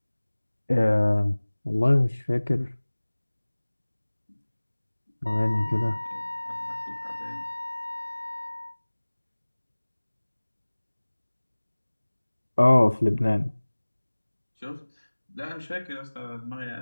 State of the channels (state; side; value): inverted; both; correlation -1.00